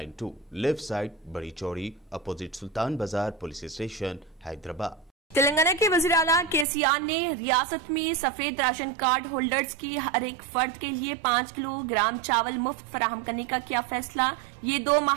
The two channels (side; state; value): left; drops out; at 6.7 s